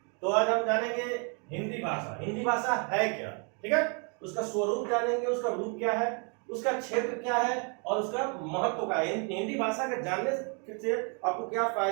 तो आज हम जानेंगे हिंदी भाषा। हिंदी भाषा है क्या, ठीक है, उसका स्वरूप जानेंगे, उसका रूप क्या है, उसका क्षेत्र क्या है और उसका महत्व क्या है। हिंदी भाषा के जानने से आपको क्या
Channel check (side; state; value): left; quieter; 36.8 dB